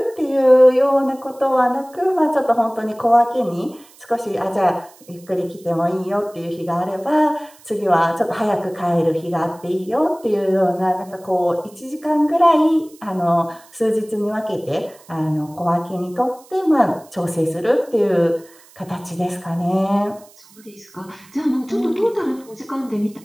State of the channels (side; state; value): right; noise; hiss, 26 dB below the sound